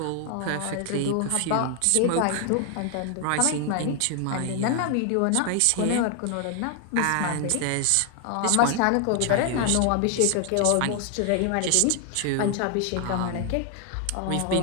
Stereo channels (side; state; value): both; different; correlation 0.00